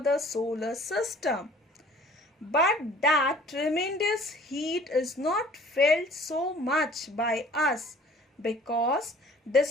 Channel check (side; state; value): both; normal; correlation 0.51